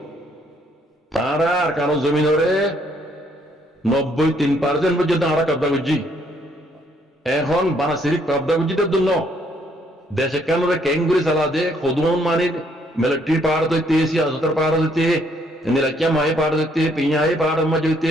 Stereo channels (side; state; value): both; normal; correlation 0.68